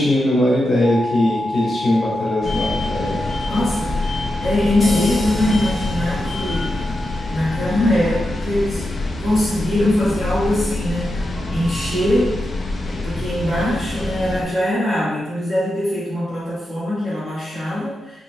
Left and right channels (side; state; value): both; normal; correlation 0.88